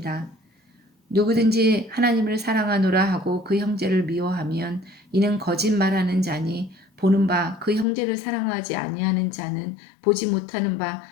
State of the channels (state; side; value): drops out; right; at 7.9 s